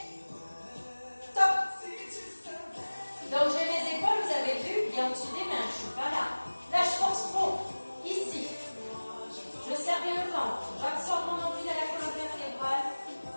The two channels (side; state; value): both; inverted; correlation -1.00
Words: top. Donc j'ai mes épaules, vous avez vu, bien au-dessus des mains. Je suis pas là. Là, je force trop. Ici. Je serre bien le ventre. J'absorbe mon nombril à la colonne vertébrale.